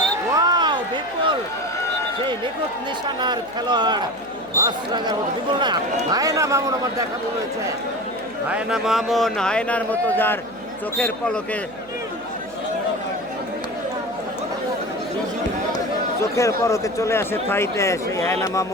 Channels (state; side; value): noise; right; hum, 26 dB below the sound